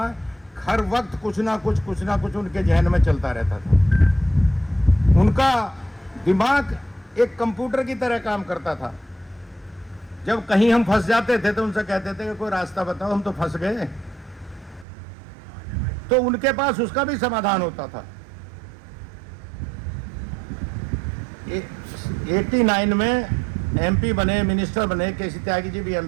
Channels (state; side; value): drops out; left; at 14.9 s